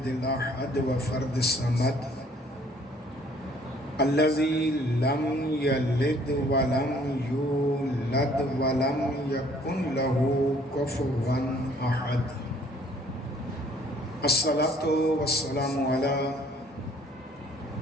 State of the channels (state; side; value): normal; both; correlation 0.59